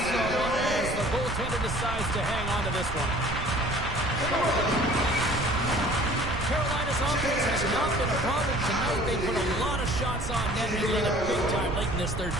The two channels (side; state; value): right; noise; rumble, 6 dB below the sound